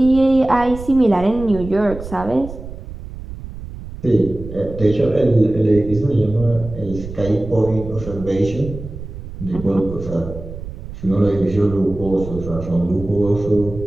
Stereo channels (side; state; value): right; noise; rumble, 12 dB below the sound